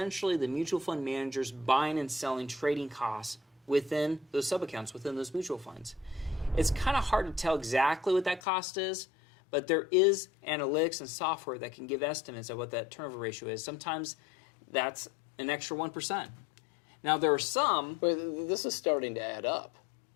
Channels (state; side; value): drops out; right; at 8.4 s